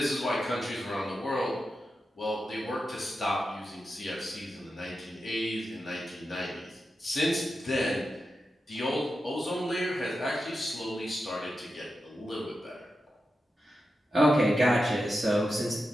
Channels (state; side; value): normal; both; correlation 0.90